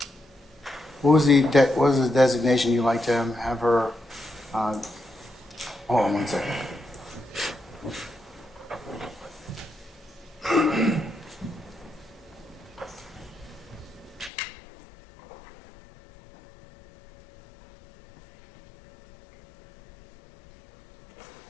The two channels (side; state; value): right; drops out; at 14.3 s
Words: What was the designation you'd like to have her? Hold on one second.